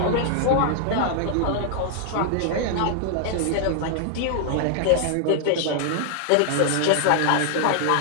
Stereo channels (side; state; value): both; different; correlation -0.01